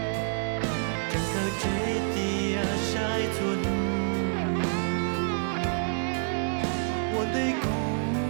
chẳng cơ chế tia sai chua nu một tay cũ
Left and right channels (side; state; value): left; silent; 59 dB below the other